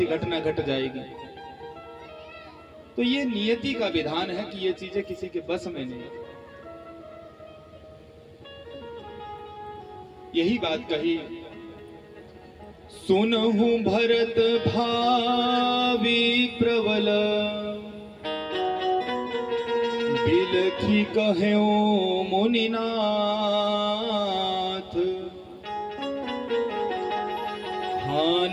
घटना घट जाएगी? तो ये नियति का विधान है कि ये चीजें किसी के बस में नहीं। यही बात कही, सुनहु भरत भावी प्रबल, बिलखी कह्यो मुनिनाथ,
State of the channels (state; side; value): identical; both; correlation 1.00